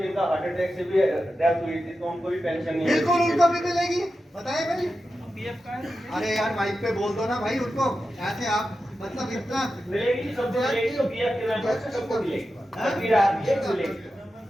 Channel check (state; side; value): normal; both; correlation 0.91